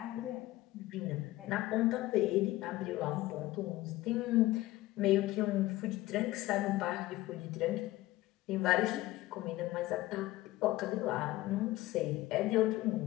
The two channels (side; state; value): right; quieter; 17.3 dB